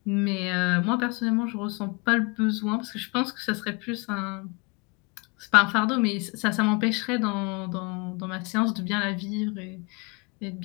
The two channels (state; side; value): quieter; right; 29.6 dB